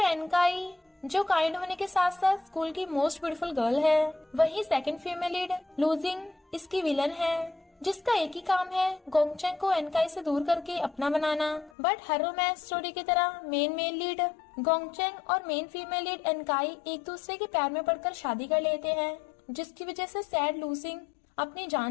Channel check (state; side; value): drops out; right; at 11.7 s